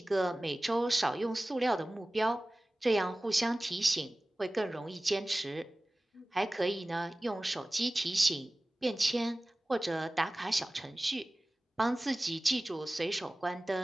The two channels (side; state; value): both; normal; correlation 0.98